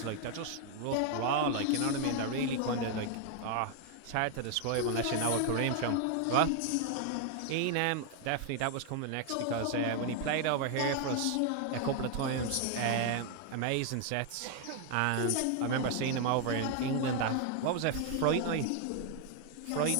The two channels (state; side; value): different; both; correlation 0.00